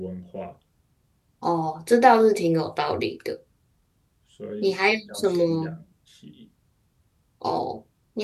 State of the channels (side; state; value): both; identical; correlation 1.00